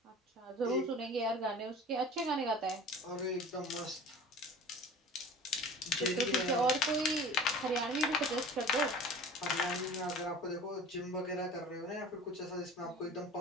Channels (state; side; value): normal; both; correlation 0.41